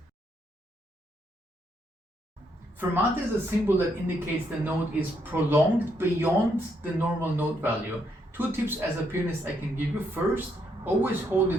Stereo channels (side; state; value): both; normal; correlation 0.75